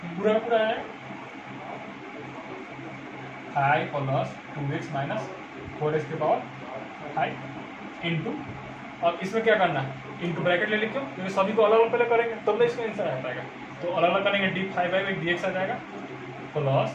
पूरा का पूरा है 5 प्लस 2x माइनस 4x के पावर 5 इंटू, और इसमें क्या करना है इंटू ब्रैकेट ले लिखो, क्योंकि सभी को अलग अलग पहले करेंगे तब तो इसका आंसर आ पाएगा। तो अलग अलग करेंगे, डी 5/dx आ जाएगा प्लस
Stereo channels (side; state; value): both; identical; correlation 1.00